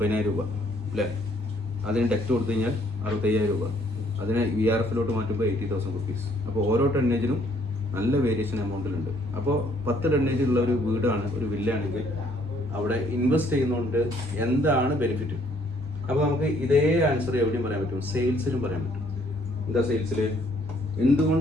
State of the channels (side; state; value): both; normal; correlation 0.65